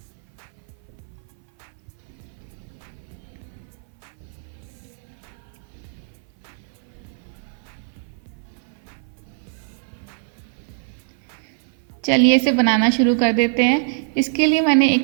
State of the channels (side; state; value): left; silent; 56 dB below the other